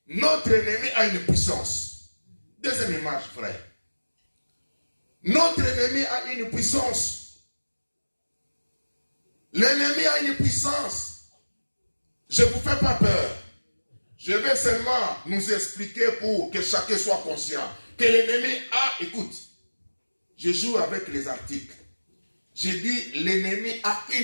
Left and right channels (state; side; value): inverted; both; correlation -1.00